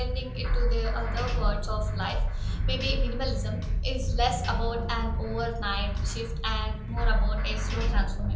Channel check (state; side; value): identical; both; correlation 1.00